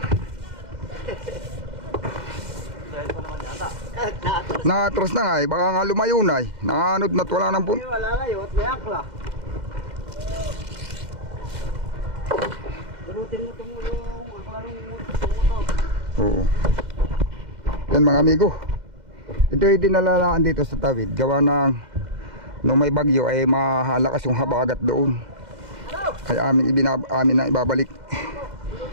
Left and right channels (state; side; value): late; left; 2.1 ms